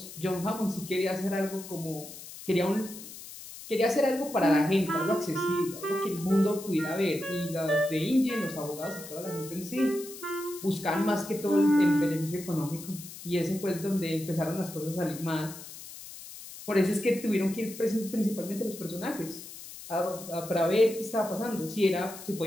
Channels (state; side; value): noise; left; hiss, 14 dB below the sound